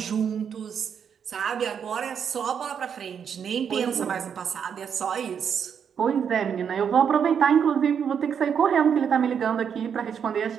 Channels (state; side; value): quieter; left; 7.5 dB